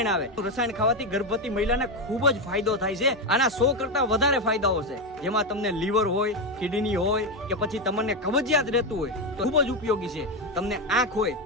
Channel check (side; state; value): both; normal; correlation 0.10